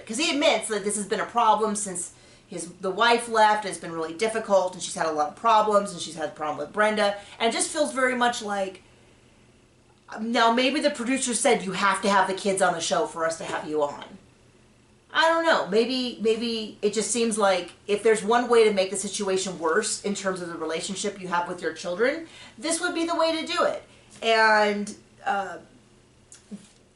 Because he admits that this has been a problem since the wife left. It's been really difficult, and she's had a lot of problems, and she's had a problem with Brenda. And it just feels very much like, now maybe the producer said you have to have the kids on the show for us to have you on. I don't know. Maybe it just seems like if there's one way to make the situation worse in terms of the relationship you have with your children, this would be the way to do it. And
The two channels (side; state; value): both; identical; correlation 1.00